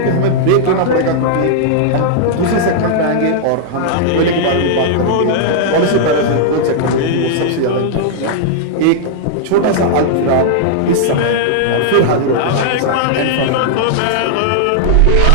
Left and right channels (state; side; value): different; both; correlation -0.01